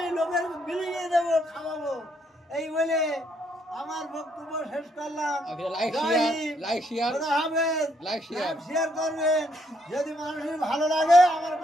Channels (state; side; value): normal; both; correlation 0.72